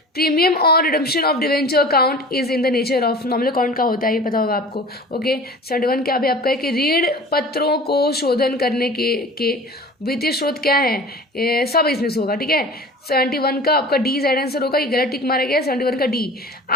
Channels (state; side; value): normal; both; correlation 0.40